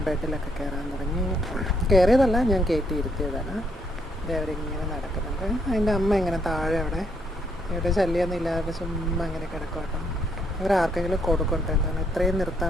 ബെഡിലൊക്കെ കയറാൻ തുടങ്ങി. കയറിയതല്ല, ഞാൻ കയറ്റി ഇരുത്തിയതാണ്. ഇത് അവരിങ്ങനെ നടക്കുന്നുണ്ട്. അതിൻ്റെ അമ്മ ഇങ്ങനെ താഴെ ഇവിടെ ശല്യമൊന്നും ഇല്ലാതെ ചുമ്മാ ഇങ്ങനെ കിടക്കും കേട്ടോ. ഇവരാർക്കെങ്കിലും കൊടുക്കട്ടെ, എന്താണ് ഇത്രയും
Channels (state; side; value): normal; both; correlation 0.72